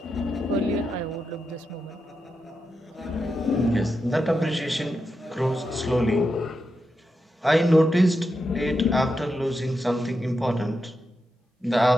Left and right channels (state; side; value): normal; both; correlation 0.87